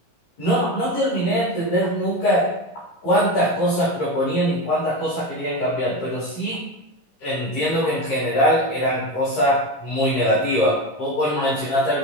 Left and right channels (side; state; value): right; late; 15 ms